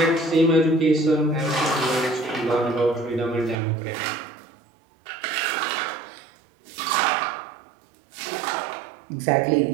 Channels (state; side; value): drops out; left; at 3.6 s